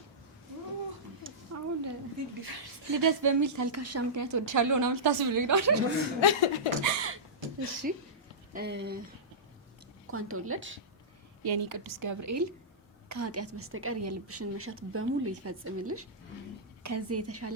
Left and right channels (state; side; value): normal; both; correlation -0.16